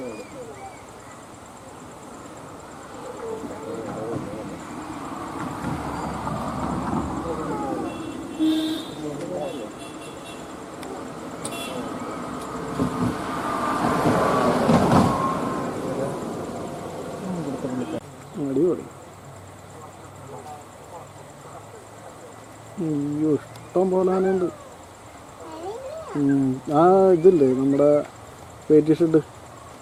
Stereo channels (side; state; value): both; identical; correlation 1.00